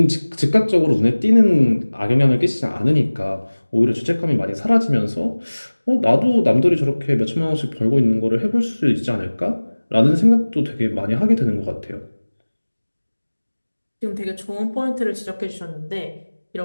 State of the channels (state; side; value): inverted; both; correlation -1.00